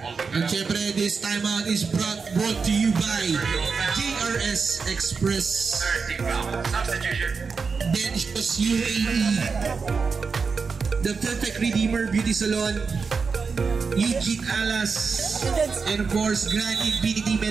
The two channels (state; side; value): quieter; left; 5.1 dB